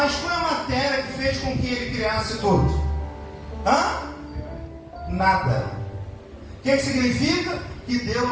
qual é a matéria que fez com que Ele criasse tudo? Nada. O que significa? Que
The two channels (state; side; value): identical; both; correlation 1.00